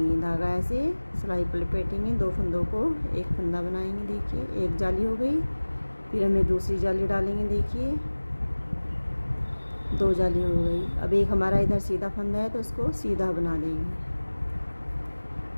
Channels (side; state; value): both; inverted; correlation -1.00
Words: धागा ऐसे सिलाई पर लपेटेंगे, 2 फंदों को एक फंदा बनाएंगे। देखिए एक जाली हो गई, फिर हमें दूसरी जाली डालेंगे। देखिए 2 जाली हो गई। अब एक हमारा इधर सीधा फंदा है तो उसको सीधा बना देंगे।